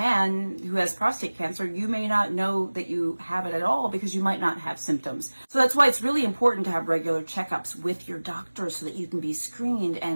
who has prostate cancer, you may not know that you have it at all because you might not have symptoms. So that's why it's really important to have regular checkups with your doctor so that you can be screened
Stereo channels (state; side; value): inverted; both; correlation -1.00